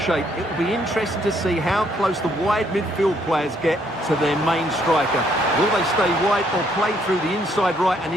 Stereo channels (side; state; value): both; normal; correlation 0.69